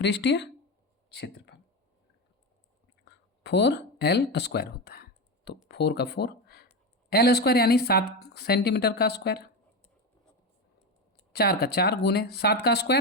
क्षेत्रफल 4L² होता है। तो 4 का 4, L² यानी 7 सेंटीमीटर का स्क्वायर, 4 का 4 गुने 7 का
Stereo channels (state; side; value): normal; both; correlation 0.17